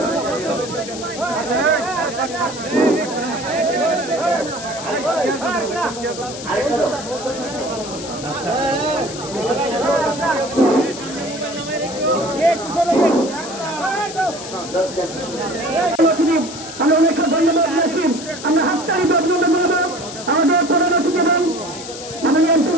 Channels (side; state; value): left; noise; hiss, 11 dB below the sound